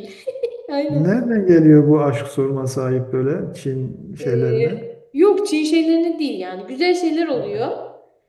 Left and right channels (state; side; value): identical; both; correlation 1.00